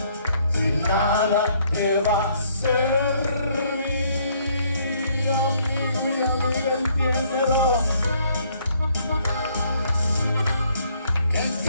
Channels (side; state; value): both; inverted; correlation -0.66